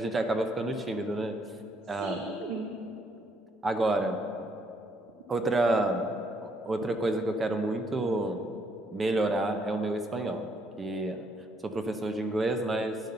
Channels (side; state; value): both; normal; correlation 0.70